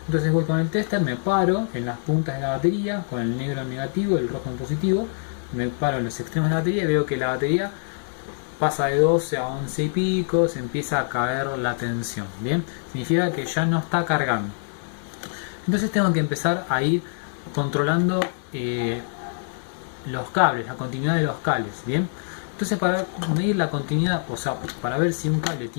Entonces voy con el tester, me paro en las puntas de la batería, con el negro en negativo y el rojo en positivo, me paro en los extremos de la batería y veo que la batería pasa de 12 a 11 y pico, se empieza a caer la tensión. Bien, significa que ya no está cargando. Entonces tengo que empezar a ir controlando los cables, la continuidad de los cables. Bien, entonces para medir la continuidad, o sea, para ver si un cable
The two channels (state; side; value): silent; right; digital silence